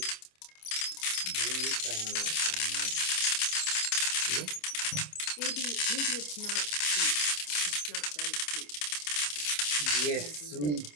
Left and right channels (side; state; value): right; late; 27 ms